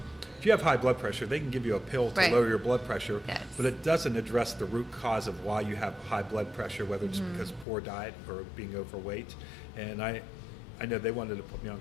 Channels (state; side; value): drops out; right; at 7.7 s